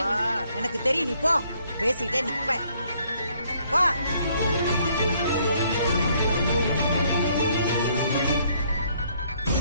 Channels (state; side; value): inverted; both; correlation -0.66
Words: எனக்கு தெரியும், நீ போ. பேசிட்டே நிப்ப. போ.